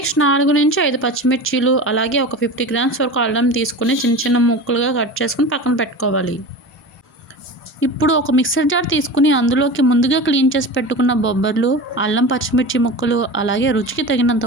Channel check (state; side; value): normal; both; correlation 0.31